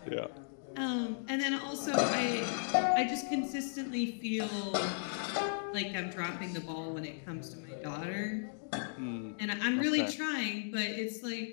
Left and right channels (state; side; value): silent; right; digital silence